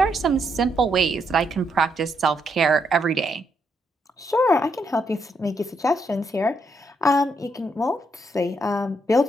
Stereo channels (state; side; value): normal; both; correlation 0.77